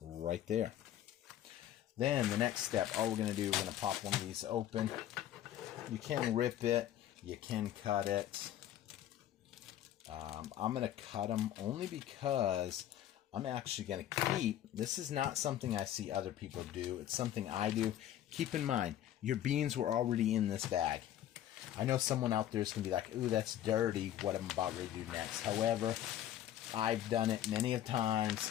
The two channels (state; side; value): quieter; right; 11.8 dB